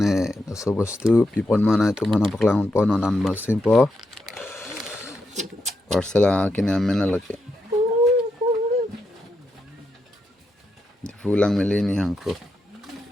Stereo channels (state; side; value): normal; both; correlation 0.84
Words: so bostu pipon mana itu mana paklang pon non basim po parsel kini amena lagi di pulang melini hangko